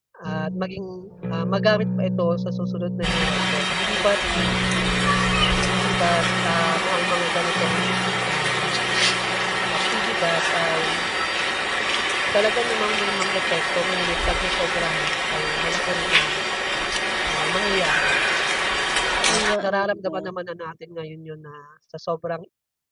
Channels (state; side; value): identical; both; correlation 1.00